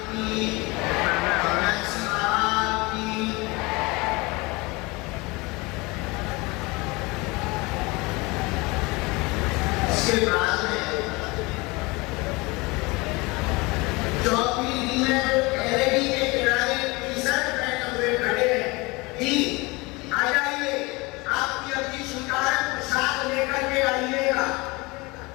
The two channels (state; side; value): quieter; right; 24.7 dB